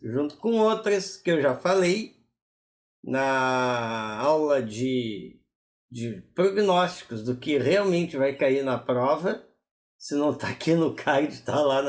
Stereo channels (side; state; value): both; identical; correlation 1.00